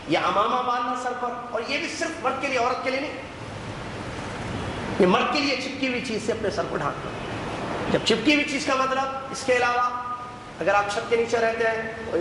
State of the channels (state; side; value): identical; both; correlation 1.00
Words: یا امامہ باندھنا سر پر، اور یہ بھی صرف مرد کے لیے، عورت کے لیے نہیں، یہ مرد کے لیے چپکی ہوئی چیز سے اپنے سر کو ڈھانکنا۔ جب چپکی ہوئی چیز کا مطلب، اس کے علاوہ اگر آپ چھت کے نیچے رہتے ہیں،